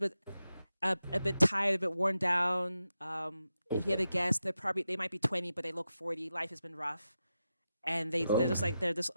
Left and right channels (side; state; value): both; inverted; correlation -0.89